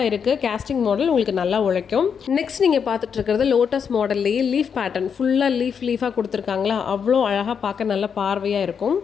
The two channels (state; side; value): quieter; right; 6.9 dB